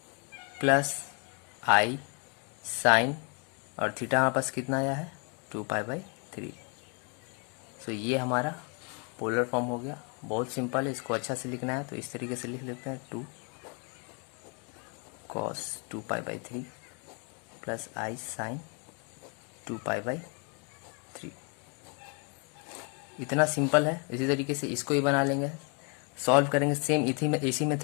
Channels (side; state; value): right; quieter; 35.7 dB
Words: प्लस आई साइन, और थीटा हमारे पास कितना आया है 2π/3। सो ये हमारा पोलर फॉर्म हो गया। बहुत सिंपल है, इसको अच्छा से लिखना है तो इस तरीके से लिख लेते हैं, 2 cos 2π/3 प्लस आई साइन 2π/3। इतना सिंपल है। इसी तरीके से इसको ही बना लेंगे, सॉल्व करेंगे सेम इसी